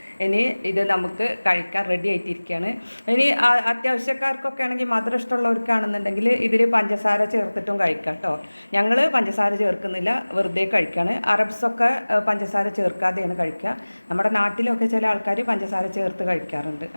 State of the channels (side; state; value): both; inverted; correlation -1.00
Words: ഇനി ഇത് നമുക്ക് കഴിക്കാൻ റെഡി ആയിട്ടിരിക്കുകയാണ്. ഇനി അത്യാവശ്യക്കാർക്കൊക്കെ ആണെങ്കിൽ മധുരം ഇഷ്ടമുള്ളവർക്കാണെന്നുണ്ടെങ്കിൽ ഇതിൽ പഞ്ചസാര ചേർത്തിട്ടും കഴിക്കാം കേട്ടോ. ഞങ്ങൾ പഞ്ചസാര ചേർക്കുന്നില്ല, വെറുതെ കഴിക്കുകയാണ്. അറബ്സൊക്കെ പഞ്ചസാര ചേർക്കാതെയാണ് കഴിക്കുക. നമ്മുടെ നാട്ടിലൊക്കെ ചില ആൾക്കാർ പഞ്ചസാര ചേർത്ത് കഴിക്കാറുണ്ട്.